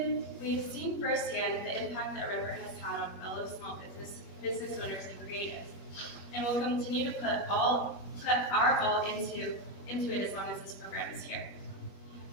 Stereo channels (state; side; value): late; right; 21 ms